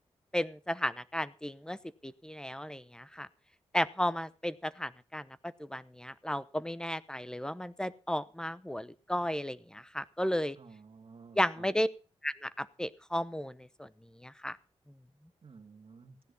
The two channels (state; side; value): normal; both; correlation 0.95